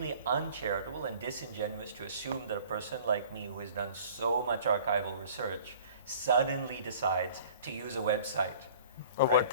uncharitable and disingenuous to assume that a person like me who has done so much archival research suddenly decides to use a website. A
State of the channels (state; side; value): inverted; both; correlation -0.48